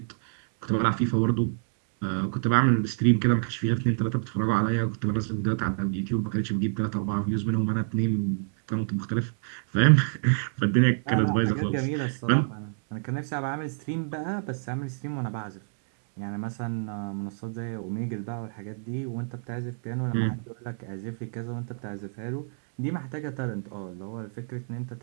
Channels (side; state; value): left; silent; digital silence